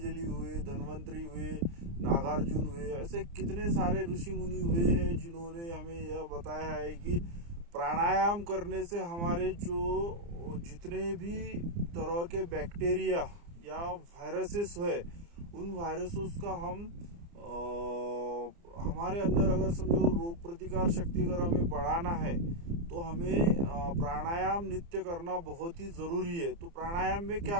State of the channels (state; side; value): late; left; 29 ms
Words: हुए, धन्वंतरी हुए, नागार्जुन हुए, ऐसे कितने सारे ऋषि मुनि हुए हैं जिन्होंने हमें यह बताया है कि प्राणायाम करने से हमारे जो जितने भी तरह के बैक्टीरिया या वायरसेस है, उन वायरसेस का हमारे अंदर अगर समझो रोग प्रतिकार शक्ति अगर हमें बढ़ाना है तो हमें प्राणायाम नित्य करना बहुत ही ज़रूरी है। तो प्राणायाम में